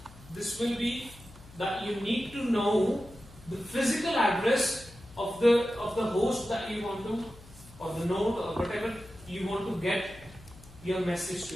this will be that you need to know the physical address of the host that you want to, or the node or whatever you want to get your message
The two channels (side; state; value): left; noise; hum, 20 dB below the sound